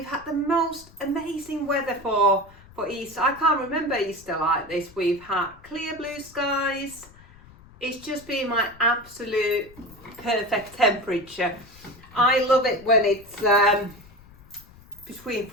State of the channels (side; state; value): left; noise; rumble, 23 dB below the sound